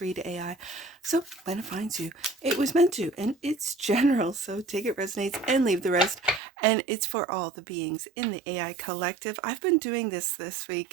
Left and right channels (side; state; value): left; drops out; at 6.4 s